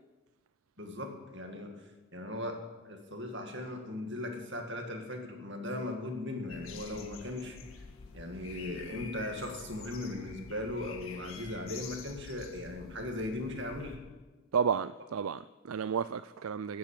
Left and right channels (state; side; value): normal; both; correlation -0.01